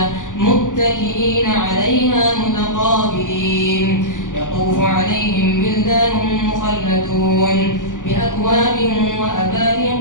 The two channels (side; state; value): right; late; 0.87 ms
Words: متكئين عليها متقابلين يطوف عليهم بلدان مخلدون بأكواب